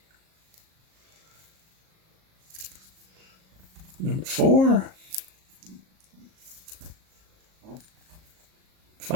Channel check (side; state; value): left; late; 37 ms